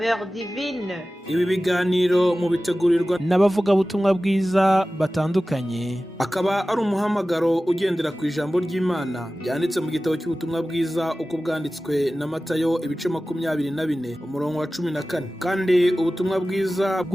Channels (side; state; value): both; normal; correlation 0.96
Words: Divine. Ibi biganiro mu bitegurirwa n'abavugabutumwa bwiza batandukanye, akaba ari umuhamagaro ugendera ku ijambo ry'Imana byanditse mu gitabo cy'ubutumwa bwiza uko bwanditswe na Matayo ibice 24 umurongo wa 14. Kandi ubutumwa bwiza